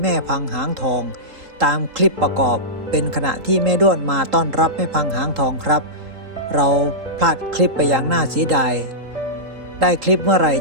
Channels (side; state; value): left; late; 3.8 ms